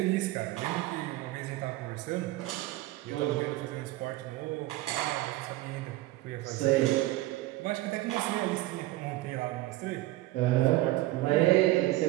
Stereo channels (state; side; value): quieter; left; 17.6 dB